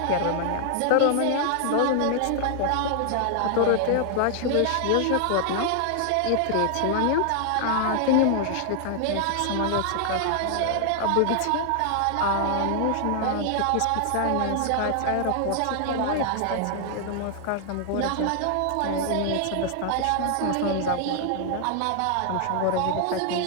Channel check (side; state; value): both; different; correlation 0.00